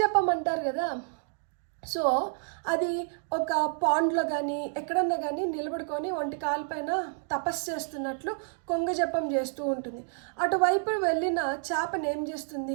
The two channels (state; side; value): silent; left; 58 dB below the other